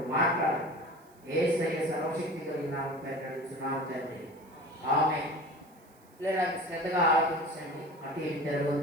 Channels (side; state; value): right; noise; hiss, 29 dB below the sound